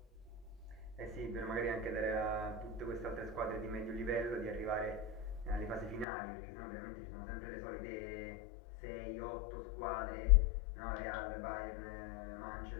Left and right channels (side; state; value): right; drops out; at 6.1 s